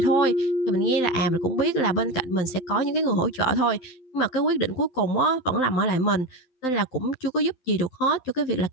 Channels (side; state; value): right; late; 12 ms